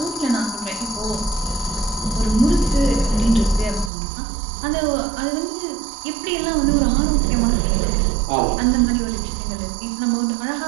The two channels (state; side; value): drops out; left; at 3.9 s